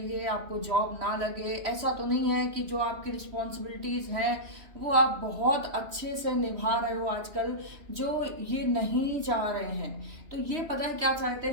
आपको जॉब ना लगे। ऐसा तो नहीं है कि जो आपकी रिस्पॉन्सिबिलिटीज़ हैं वो आप बहुत अच्छे से निभा रहे हो आजकल, जो ये नहीं चाह रहे हैं। तो ये पता है क्या चाहते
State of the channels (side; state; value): left; late; 3.1 ms